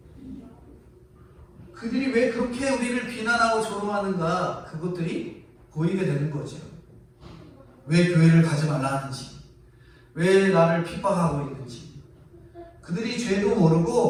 그들이 왜 그렇게 우리를 비난하고 조롱하는가, 그것들이 보이게 되는 거죠. 왜 교회를 가지 말라 하는지, 왜 나를 핍박하고 있는지, 그들이 죄도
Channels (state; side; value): identical; both; correlation 1.00